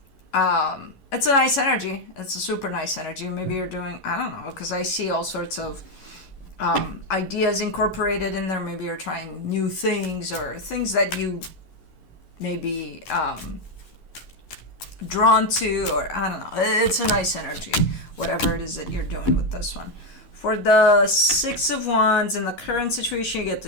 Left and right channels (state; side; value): late; right; 11 ms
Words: It's a nice energy. It's a super nice energy. Maybe you're doing, I don't know, because I see all sorts of ideas incorporated in there. Maybe you're trying new things, or things that you may be drawn to, or I don't know. It's a nice energy, whatever it is that you're doing with this one. For the Six of Wands, in the current situation, you get